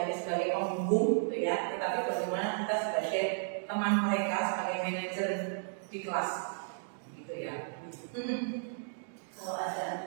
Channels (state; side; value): silent; left; digital silence